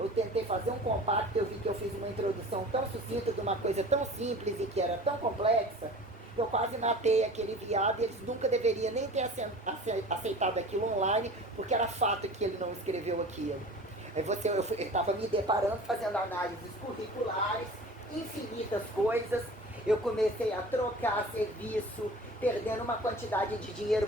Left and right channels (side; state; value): both; normal; correlation 0.40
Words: tentei fazer um compacto, eu vi que eu fiz uma introdução tão sucinta de uma coisa tão simples e que era tão complexa, eu quase matei aquele viado e eles nunca deveriam nem ter aceitado aquilo online, porque era fato que ele não escreveu aquilo. Aí eu estava me deparando, fazendo análises curriculares, infinitas coisas, eu comecei a trocar serviço, perdendo uma quantidade de dinheiro,